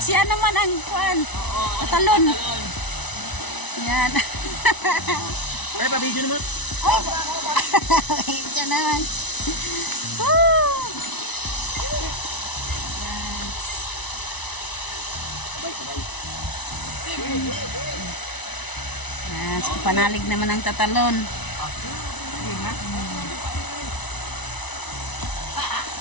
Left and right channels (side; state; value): right; late; 1.0 ms